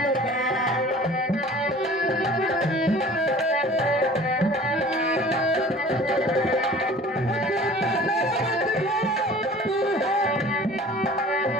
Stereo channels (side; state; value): both; normal; correlation 0.46